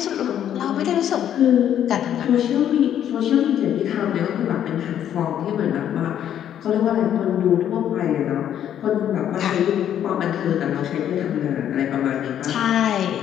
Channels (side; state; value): right; quieter; 10.2 dB